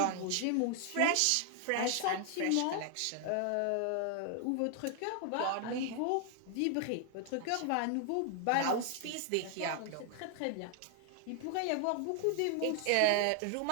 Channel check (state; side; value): different; both; correlation 0.00